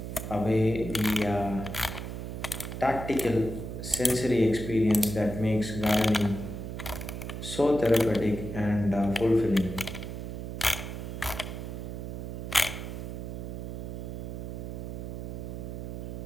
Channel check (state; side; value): noise; right; hum, 6 dB below the sound